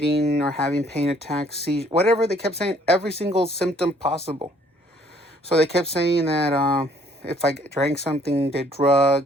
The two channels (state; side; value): normal; both; correlation 0.62